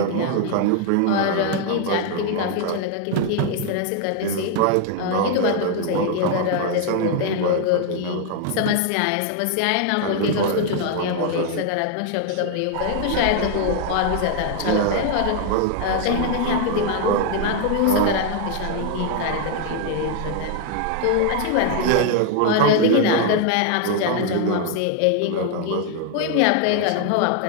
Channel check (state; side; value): different; both; correlation 0.00